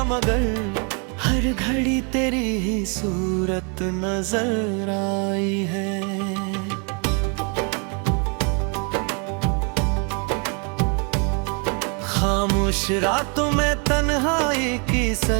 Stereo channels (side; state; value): left; quieter; 36.1 dB